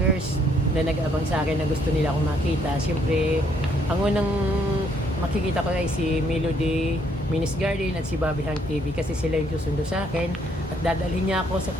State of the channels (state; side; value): normal; both; correlation 0.69